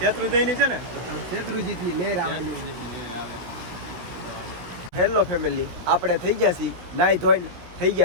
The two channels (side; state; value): left; late; 17 ms